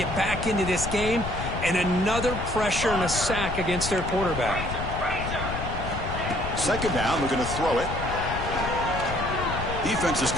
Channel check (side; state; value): left; noise; rumble, 6 dB below the sound